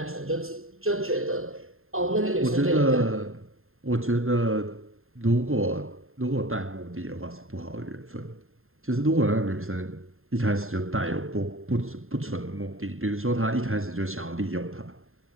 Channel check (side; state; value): left; late; 0.61 ms